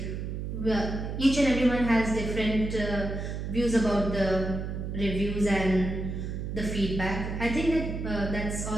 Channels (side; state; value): right; noise; hum, 5 dB below the sound